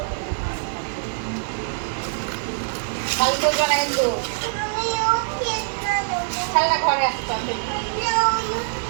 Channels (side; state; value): left; silent; digital silence